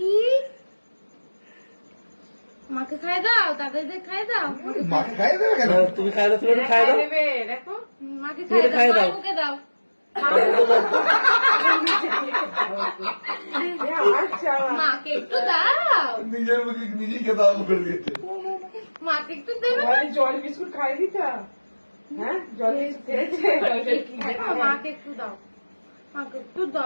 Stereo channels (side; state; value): both; inverted; correlation -1.00